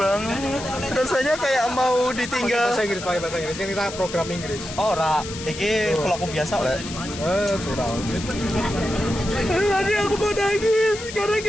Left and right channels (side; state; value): left; noise; hiss, 11 dB below the sound